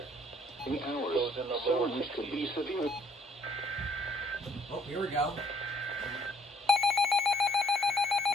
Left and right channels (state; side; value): normal; both; correlation 0.63